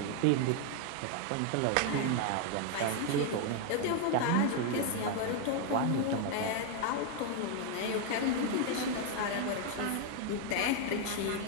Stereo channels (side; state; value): both; different; correlation 0.01